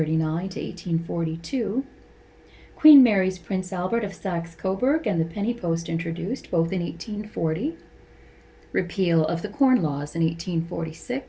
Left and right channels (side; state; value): both; identical; correlation 1.00